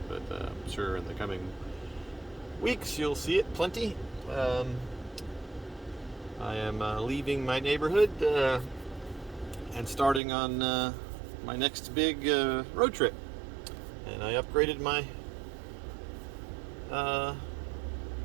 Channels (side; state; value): left; drops out; at 10.2 s